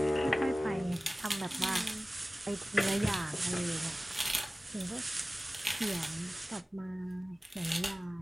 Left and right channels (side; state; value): both; normal; correlation 0.97